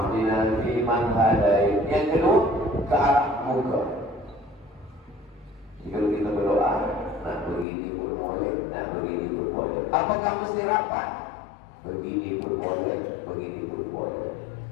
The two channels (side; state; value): right; drops out; at 7.7 s